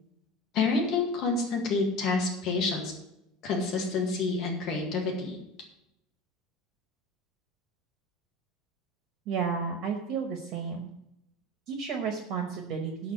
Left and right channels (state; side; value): normal; both; correlation 0.34